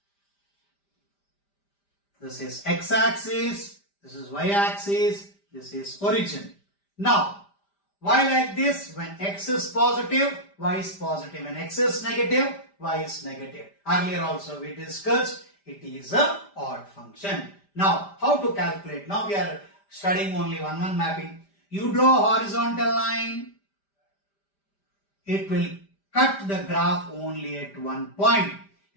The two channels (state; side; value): late; right; 5.0 ms